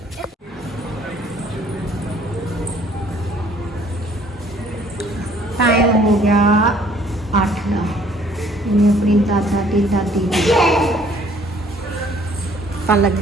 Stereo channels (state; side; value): normal; both; correlation 0.59